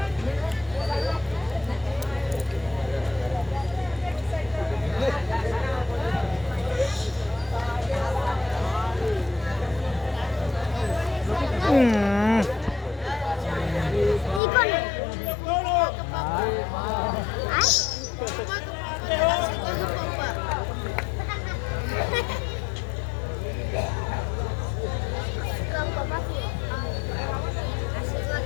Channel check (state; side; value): drops out; right; at 14.4 s